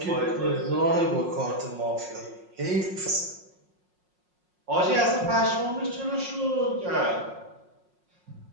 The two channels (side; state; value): left; late; 5.5 ms